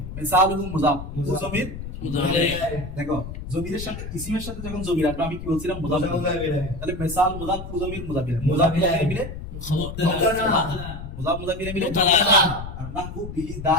মিসালুহু মুজাফ জমির দেখো জমিরের সাথে ইসিমের সাথে যখন জমির আসবে আমি কি বলছিলাম মুজাফ তাহলে মিসাল মুজাফ জমির মুজাফিলে মিলে মিলে আর নাহু বিহি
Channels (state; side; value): noise; left; rumble, 9 dB below the sound